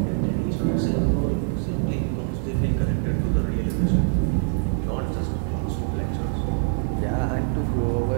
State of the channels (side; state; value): left; silent; 62 dB below the other